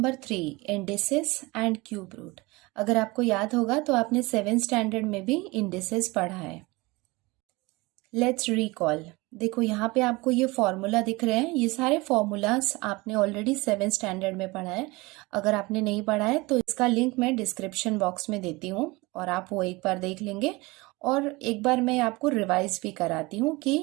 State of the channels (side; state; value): left; quieter; 23.4 dB